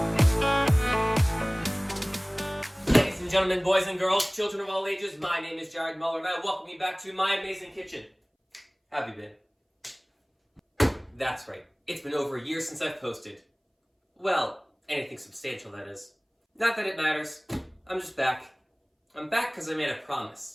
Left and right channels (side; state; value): both; identical; correlation 1.00